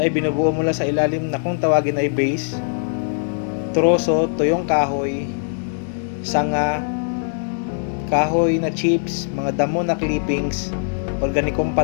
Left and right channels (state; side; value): silent; right; digital silence